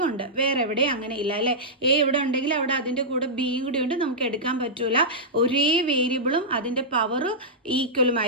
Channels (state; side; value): normal; both; correlation -0.12